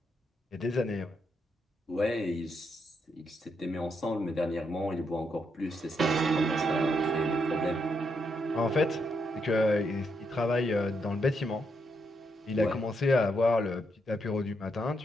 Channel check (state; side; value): normal; both; correlation 0.79